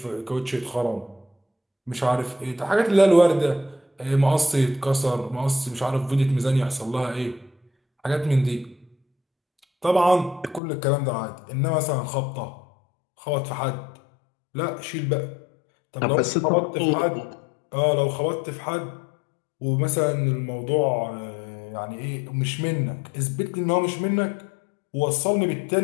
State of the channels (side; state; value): right; drops out; at 10.6 s